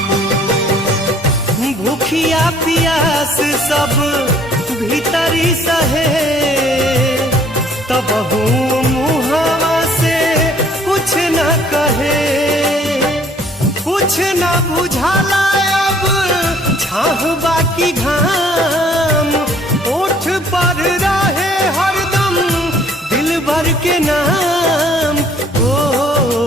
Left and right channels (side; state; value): both; normal; correlation 0.58